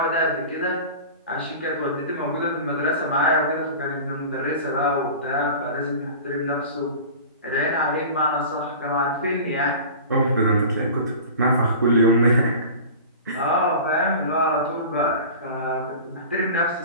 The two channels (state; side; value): inverted; both; correlation -0.37